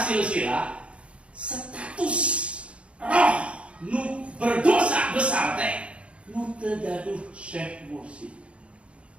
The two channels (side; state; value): left; late; 0.060 ms